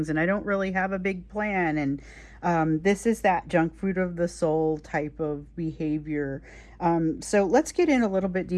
and I don't really have a big plan. And this is that junk food of the soul type of behavior. So let's get in a little bit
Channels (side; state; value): both; identical; correlation 1.00